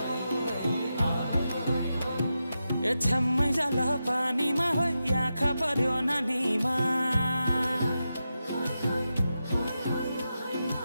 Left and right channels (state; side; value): inverted; both; correlation -0.89